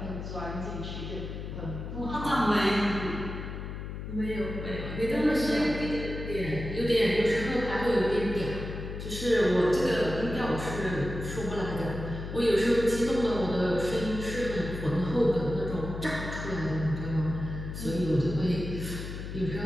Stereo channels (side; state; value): left; noise; hum, 7 dB below the sound